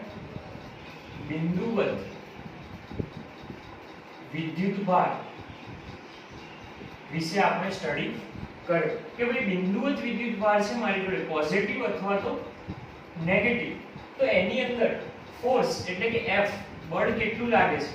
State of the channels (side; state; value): both; identical; correlation 1.00